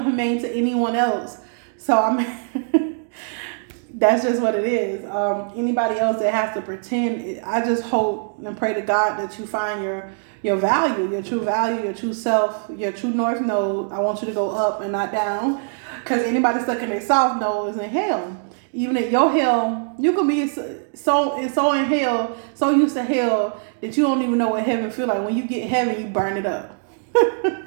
to anyone else. So that's just what it is. Anybody else that has to pretend, I just hope and pray to God that you find your value, your true value, your true self, your true north node. I want you to go up and not down. Because anybody stuck in their south node is in hell. Even in your hell, you can be so in hell, so used to hell that you don't even know what heaven feel like. When you get heaven, you burn it up.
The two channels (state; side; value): silent; left; digital silence